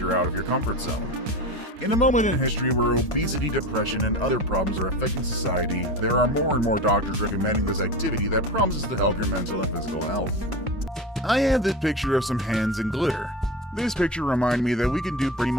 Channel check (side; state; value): both; normal; correlation 0.27